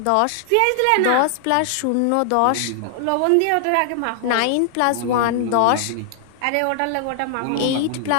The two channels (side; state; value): both; different; correlation 0.00